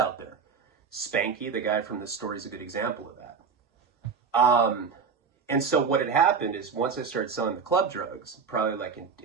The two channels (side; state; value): left; quieter; 5.8 dB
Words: there. Spanky, the guy from this story, is a good example of that. And so what had happened is once I started selling the club drugs, probably like